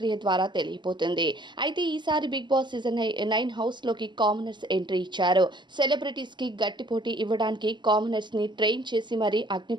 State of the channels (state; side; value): late; left; 0.22 ms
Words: ద్వారా తెలియపోతుంది. అయితే ఈసారి బిగ్ బాస్ సీజన్ 9 హౌస్లోకి కామనర్స్ ఎంట్రీ ఇచ్చారు. సెలబ్రిటీస్కి గట్టి పోటీ ఇవ్వడానికి కామనర్స్ని ట్రైన్ చేసి మరీ అగ్ని